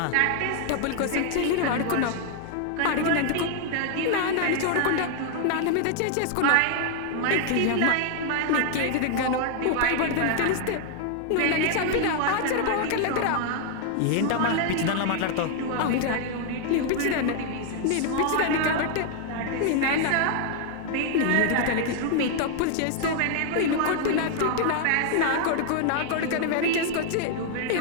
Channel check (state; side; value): different; both; correlation 0.00